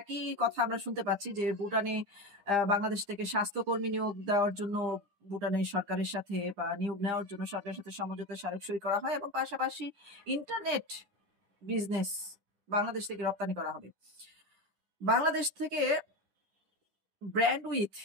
কথা আমরা শুনতে পাচ্ছি যে ভুটানে বাংলাদেশ থেকে স্বাস্থ্যকর্মী নিয়োগ দেওয়ার জন্য ভুটানের সরকারের সাথে বা নিয়োগ নেওয়ার জন্য সরকারের সাথে সমঝোতা স্মারক সই করা হয় এবং পাশাপাশি ইন্টারনেট বিজনেস বাংলাদেশ থেকে রপ্তানি করা হবে। বাংলাদেশ থেকে ব্র্যান্ড উইথ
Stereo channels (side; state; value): left; late; 10 ms